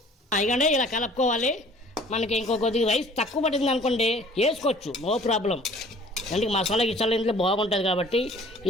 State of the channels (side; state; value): both; normal; correlation 0.51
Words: ఇకండి ఇలా కలుపుకోవాలి. మనకి ఇంకో కొద్దిగా రైస్ తక్కువ పడింది అనుకోండి వేసుకోవచ్చు, నో ప్రాబ్లం. అంటే మసాలా గిసాలా ఇంట్లో బాగుంటుంది కాబట్టి